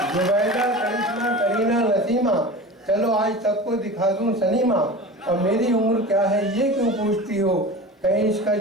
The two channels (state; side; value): normal; both; correlation 0.33